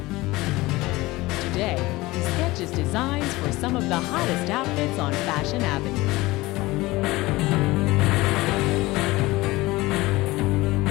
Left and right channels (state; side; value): quieter; right; 20.1 dB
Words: Today, he sketches designs for some of the hottest outfits on Fashion Avenue.